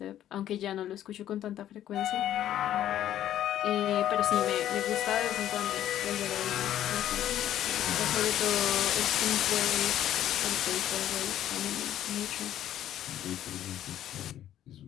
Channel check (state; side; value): quieter; right; 11.8 dB